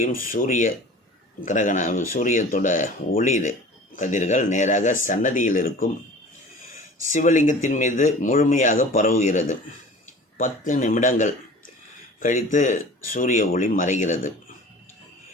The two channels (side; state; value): both; normal; correlation 0.42